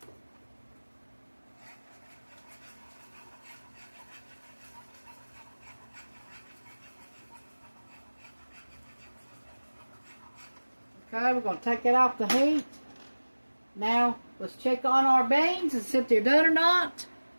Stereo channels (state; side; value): inverted; both; correlation -1.00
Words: Okay, we're going to take it off the heat. Now, let's check on our beans and see if they're done or not.